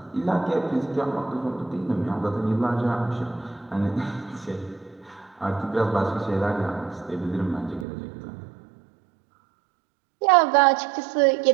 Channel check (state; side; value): drops out; left; at 7.9 s